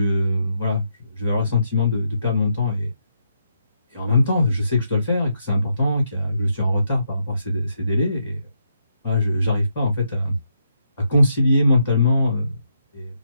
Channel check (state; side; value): inverted; both; correlation -0.79